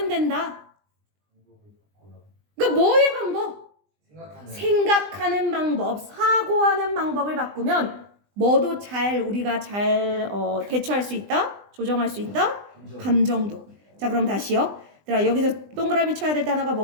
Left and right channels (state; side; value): late; left; 20 ms